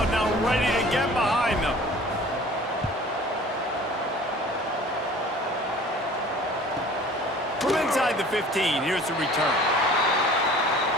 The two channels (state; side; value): normal; both; correlation 0.47